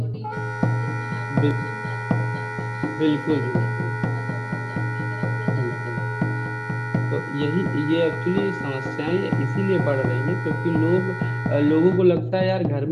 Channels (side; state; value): both; identical; correlation 1.00